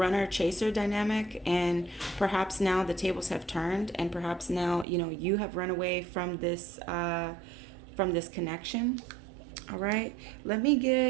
chaser dynamic, and perhaps now the tables have turned, and perhaps now, you know, you have run away from this connection. All right. I'm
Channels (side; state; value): left; drops out; at 4.9 s